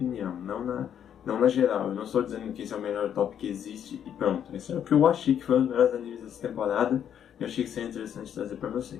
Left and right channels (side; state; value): right; quieter; 9.2 dB